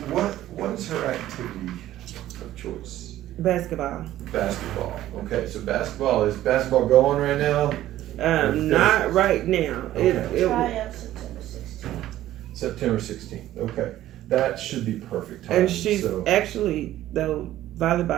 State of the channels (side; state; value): left; quieter; 13.8 dB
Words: What's her activity of choice? Basketball. Basketball. Okay, so is basketball going right now? Not right now. Okay. Try out September 16th. September 16th. Okay, that should be perfect time. And she's actually, though,